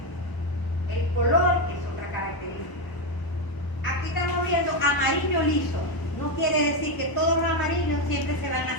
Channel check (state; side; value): late; right; 1.0 ms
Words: El color es otra característica. Aquí estamos viendo amarillo liso. No quiere decir que todos los amarillos siempre se van